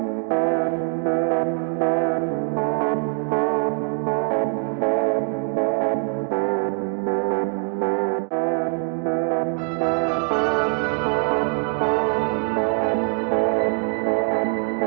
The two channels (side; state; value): left; silent; 56 dB below the other